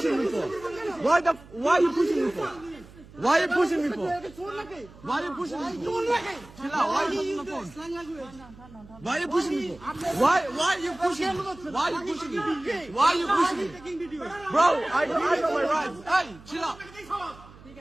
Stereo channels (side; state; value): right; noise; hum, 21 dB below the sound